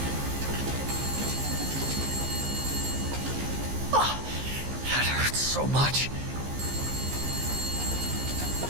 Oh, that hurts so much.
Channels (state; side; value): late; left; 15 ms